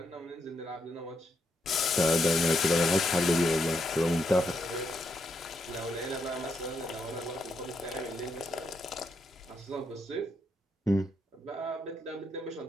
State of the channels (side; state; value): both; normal; correlation 0.80